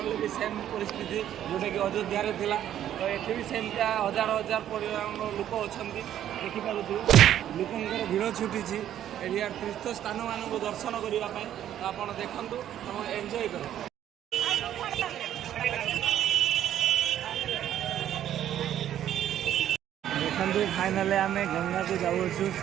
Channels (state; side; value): quieter; left; 11.1 dB